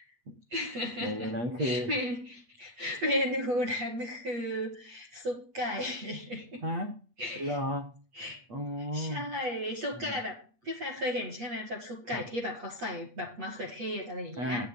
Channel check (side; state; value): left; late; 8.4 ms